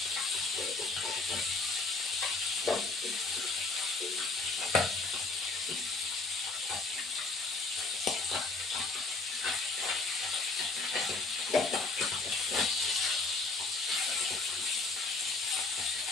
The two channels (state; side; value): quieter; right; 3.7 dB